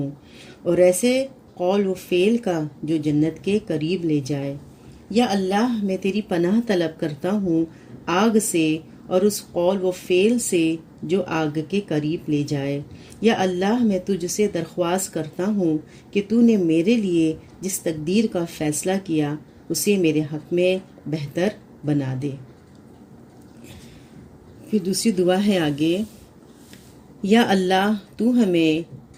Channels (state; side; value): identical; both; correlation 1.00